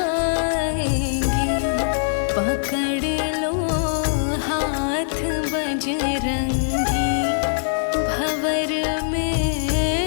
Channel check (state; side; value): silent; right; 64 dB below the other